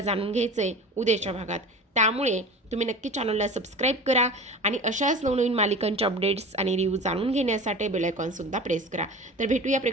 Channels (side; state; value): both; normal; correlation 0.35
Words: जाणून घ्यायचं आहे उद्याच्या भागात. त्यामुळे तुम्ही नक्की चॅनलला सबस्क्राईब करा आणि अशाच नवनवीन मालिकांच्या अपडेट्स आणि रिव्ह्यू जाणून घेण्यासाठी बेल आयकॉनसुद्धा प्रेस करा. तर भेटूया